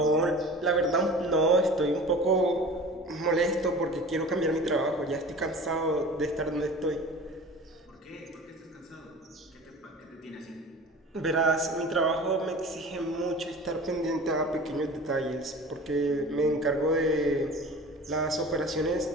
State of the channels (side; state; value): both; normal; correlation 0.39